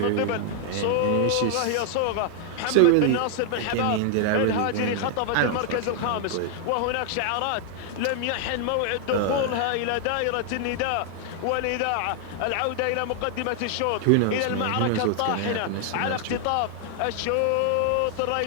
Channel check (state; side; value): different; both; correlation 0.00